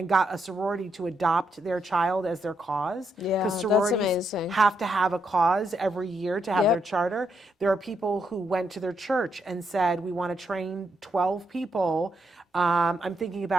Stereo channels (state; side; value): normal; both; correlation 0.79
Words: got a sorority to adopt their child as their cause. Yeah, because that's sororities amazing. have to have a cause every year to have their charter. There are people who went to their church and said, we want to train 12 people. I'm thinking